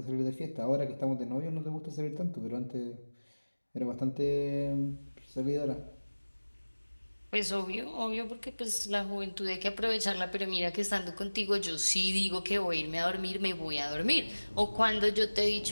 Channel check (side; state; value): both; inverted; correlation -1.00